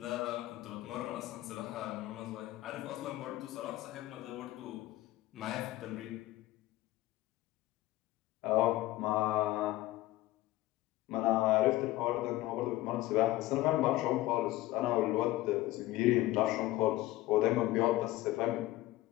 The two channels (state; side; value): quieter; right; 17.0 dB